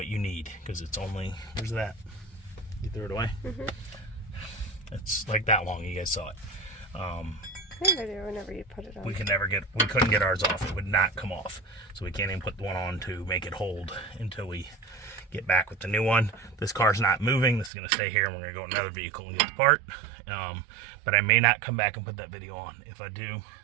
you need, because it's only, where's that? You threw it away? It's like that long. You guys saw it. Whenever you put it on. We couldn't get ours off. It would not come off. So we can't even put the one on to make it hold until we get back with the new one. This car's not moving. This is going to stay here, and we're going to go in another vehicle and get the part. But I may not come back and put that video on. If I do,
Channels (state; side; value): drops out; left; at 17.7 s